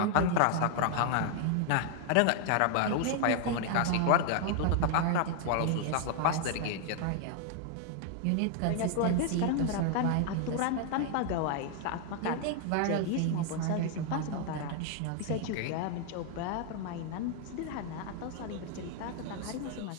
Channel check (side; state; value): both; different; correlation 0.00